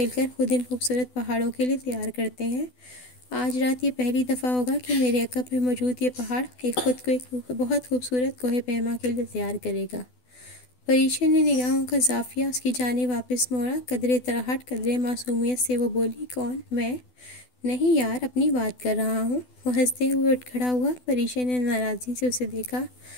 खुद इन खूबसूरत पहाड़ों के लिए तैयार करते हैं। आज रात ये पहली दफ़ा होगा कि मेरे अकब में मौजूद ये पहाड़ खुद को एक बहुत खूबसूरत कोहे पैमा के लिए तैयार करेगा। परीक्षा ने निगाहों का जाफिया उसकी जाने वापस मोड़ा। कदरे तराहट कदरे मासूमियत से वो बोली, कौन? मैं? नहीं यार, अपनी बात कर रहा हूँ। वो हंसते हुए उठ खड़ा हुआ। परीक्षा ने नाराज़गी से उसे देखा।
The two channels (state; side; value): late; right; 12 ms